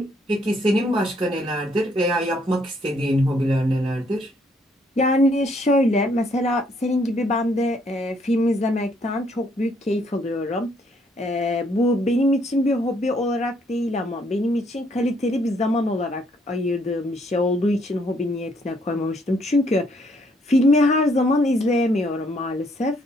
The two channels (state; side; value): normal; both; correlation 0.68